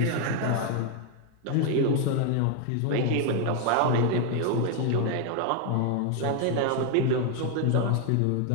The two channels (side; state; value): both; different; correlation 0.01